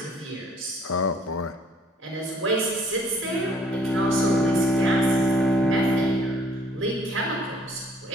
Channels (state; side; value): normal; both; correlation 0.59